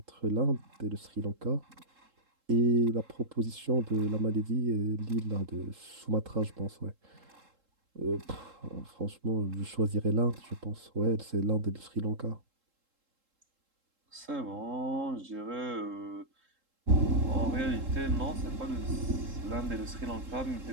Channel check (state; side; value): late; left; 3.7 ms